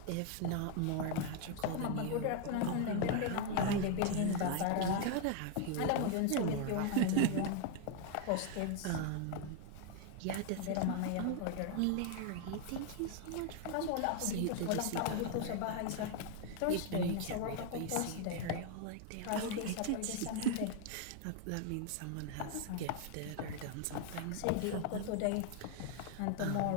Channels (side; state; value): both; different; correlation 0.00